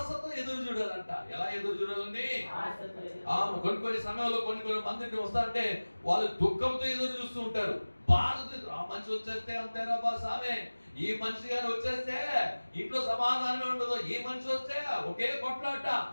ఎదురు చూడాలంట. ఎలా ఎదురు చూడాలండి? కొన్ని సమయంలో కొన్ని మందిని వస్తారంటే వాళ్ళు దుఃఖంతో ఎదురు చూస్తూ ఉంటారు, బాధతో. ఆ మనిషి వచ్చేస్తే అంతేరా బా సామే, ఈ మనిషి గారు వచ్చేస్తే ఇంట్లో సమాధానమే ఉండదు, ఈ మనిషి వస్తే ఒకే కొట్లాట,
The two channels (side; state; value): both; inverted; correlation -1.00